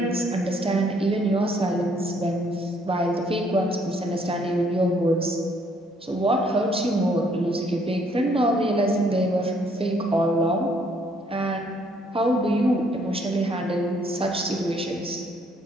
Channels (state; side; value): normal; both; correlation 0.66